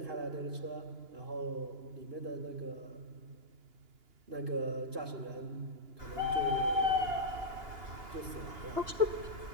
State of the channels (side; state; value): left; late; 2.9 ms